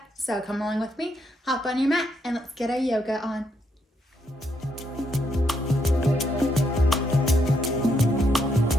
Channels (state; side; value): normal; both; correlation 0.77